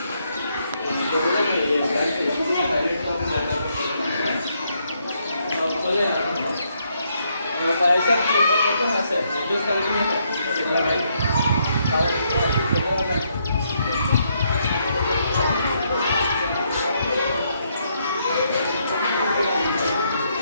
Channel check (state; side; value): inverted; both; correlation -0.75